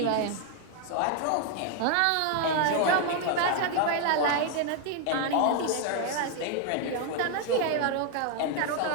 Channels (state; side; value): different; both; correlation 0.00